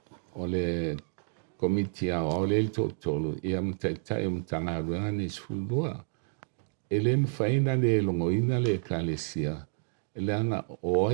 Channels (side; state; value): left; silent; 58 dB below the other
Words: o le komiti o le totolu ia mtaitai o mtangaruanga ni sfulua e le mwhaina le longoina le ekalesia e le anga o